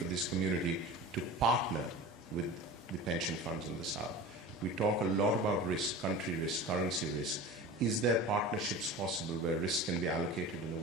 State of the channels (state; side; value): normal; both; correlation 0.34